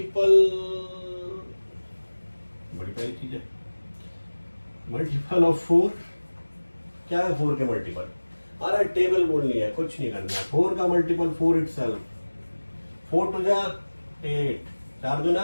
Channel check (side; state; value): both; inverted; correlation -1.00